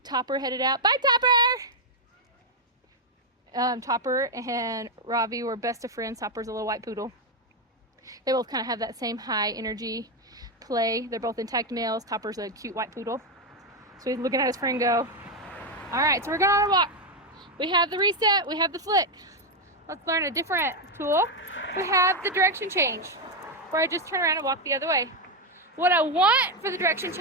Topper headed out. Bye, Topper! Topper and Ravi were best of friends. Topper's a little white poodle. They both kind of have that same high energy play. They're both intact males. Topper's a cute white poodle. So he's looking at his friend go. All right, so we're going on a walk. We have the reset, we have the flick. Let's learn a different tool. We have the direction change, where I just turn around and walk the other way. What I want for the direction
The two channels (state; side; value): normal; both; correlation 0.04